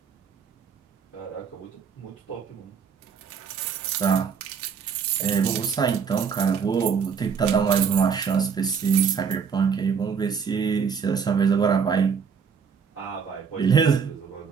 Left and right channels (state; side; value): quieter; left; 6.4 dB